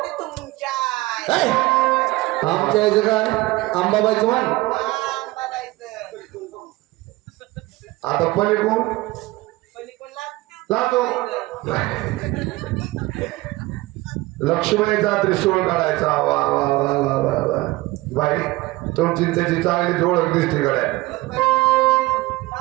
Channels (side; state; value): left; quieter; 20.3 dB